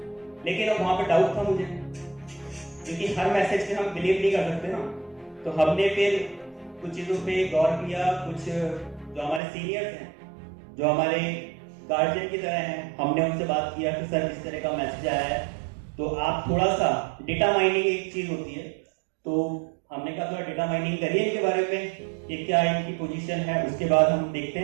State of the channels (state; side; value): drops out; left; at 9.4 s